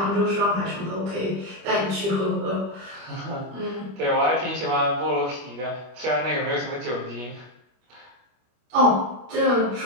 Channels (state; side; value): late; left; 25 ms